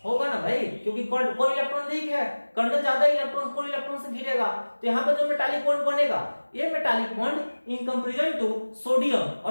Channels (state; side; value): inverted; both; correlation -1.00